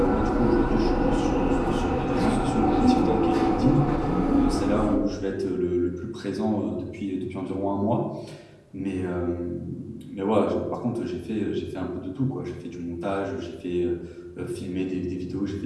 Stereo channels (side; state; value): both; identical; correlation 1.00